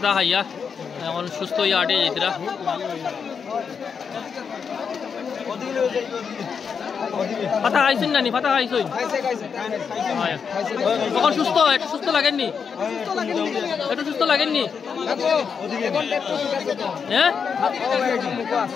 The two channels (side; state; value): right; quieter; 6.3 dB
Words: খাইয়া এখন সুস্থ হইয়া আটে যেতরা ফাতা খাইছেন নানি? ফাতা খাইছেন তখন সুস্থ? একটু সুস্থ লাগেননি? একটু সুস্থ লাগেননি? হ্যাঁ